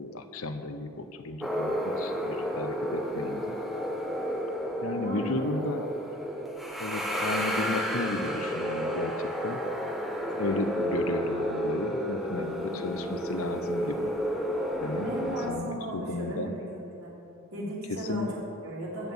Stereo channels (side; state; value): both; normal; correlation 0.51